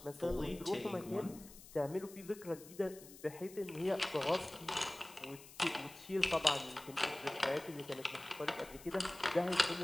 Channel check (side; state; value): left; noise; hiss, 18 dB below the sound